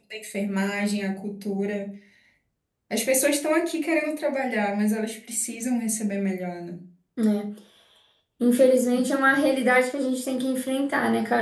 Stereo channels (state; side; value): identical; both; correlation 1.00